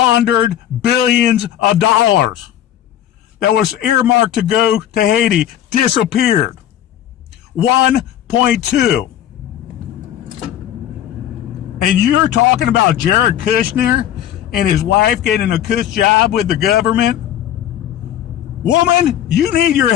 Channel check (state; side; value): quieter; right; 11.3 dB